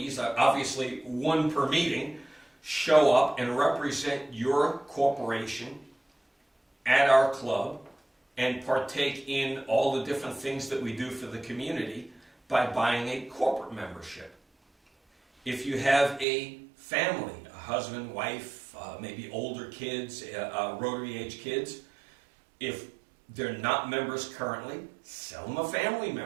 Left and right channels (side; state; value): left; drops out; at 16.2 s